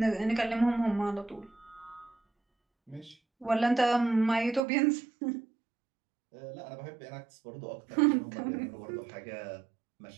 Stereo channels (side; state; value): left; drops out; at 4.6 s